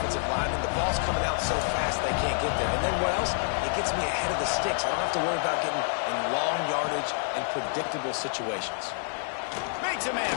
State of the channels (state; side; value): silent; right; 59 dB below the other